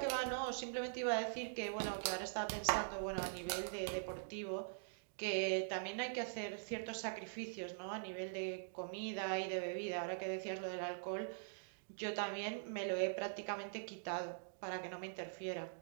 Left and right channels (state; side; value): silent; left; digital silence